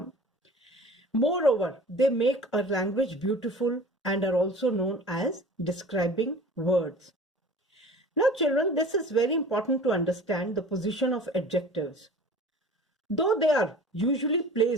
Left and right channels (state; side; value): normal; both; correlation 0.42